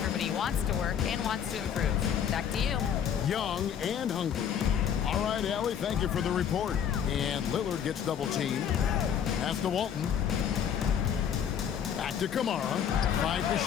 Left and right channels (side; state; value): right; quieter; 8.5 dB